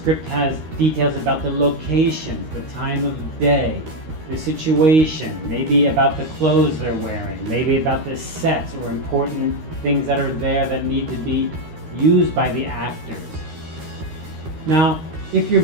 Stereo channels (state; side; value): late; left; 13 ms